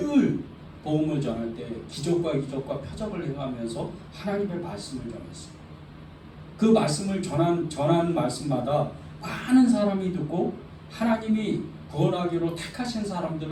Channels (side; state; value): both; identical; correlation 1.00